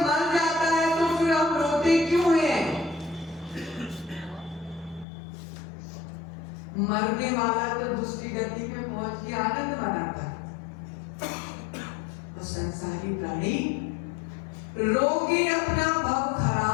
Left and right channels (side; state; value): right; drops out; at 5.1 s